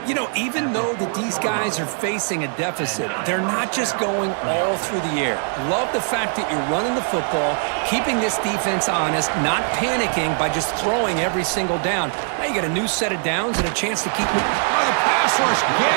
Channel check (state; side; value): silent; left; 55 dB below the other